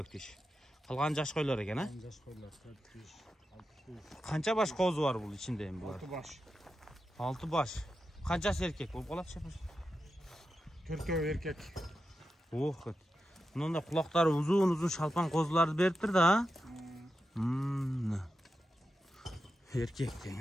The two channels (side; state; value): both; normal; correlation 0.89